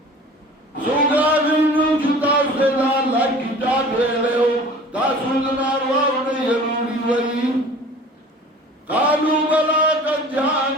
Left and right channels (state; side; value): normal; both; correlation 0.44